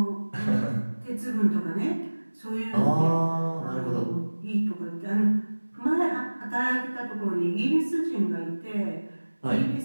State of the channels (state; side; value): inverted; both; correlation -1.00